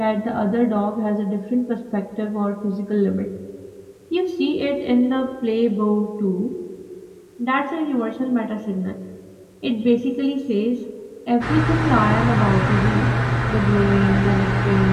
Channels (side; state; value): both; identical; correlation 1.00